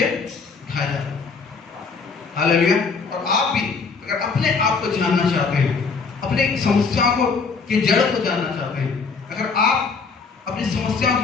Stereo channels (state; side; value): quieter; right; 4.9 dB